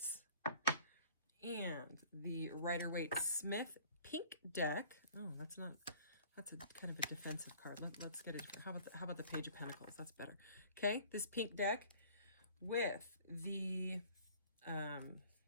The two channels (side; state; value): both; inverted; correlation -0.50